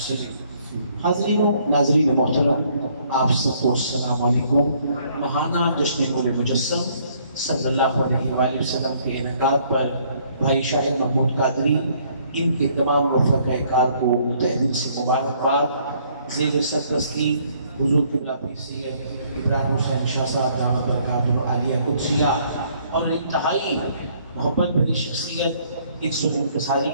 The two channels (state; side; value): inverted; both; correlation -0.64